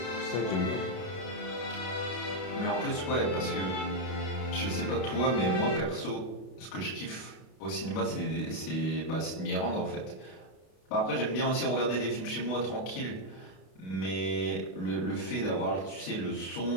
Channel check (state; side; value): late; right; 32 ms